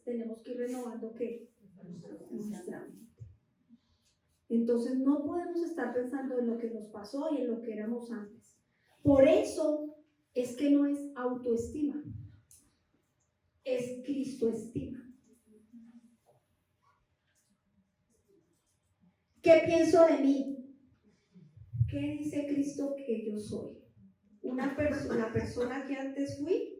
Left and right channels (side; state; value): both; identical; correlation 1.00